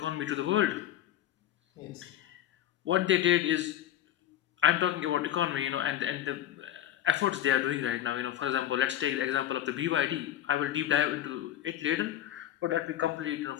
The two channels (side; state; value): right; quieter; 12.1 dB